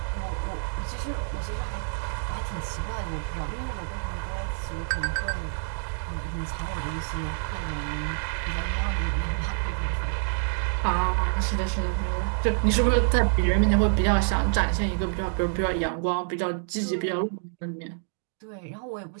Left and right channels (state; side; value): silent; left; digital silence